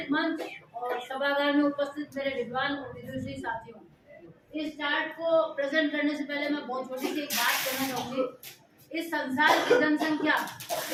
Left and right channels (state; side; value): identical; both; correlation 1.00